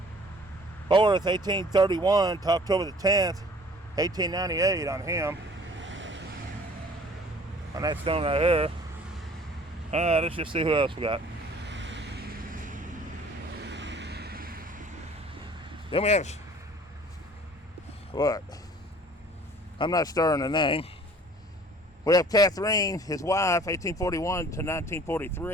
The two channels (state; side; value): normal; both; correlation 0.51